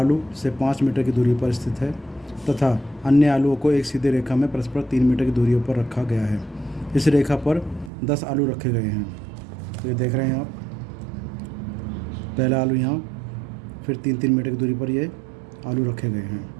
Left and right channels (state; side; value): drops out; left; at 7.9 s